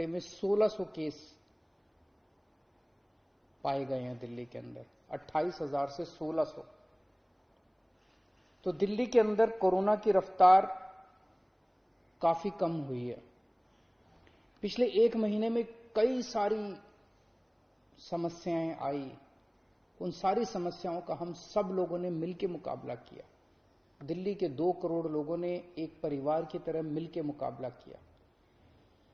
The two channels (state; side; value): identical; both; correlation 1.00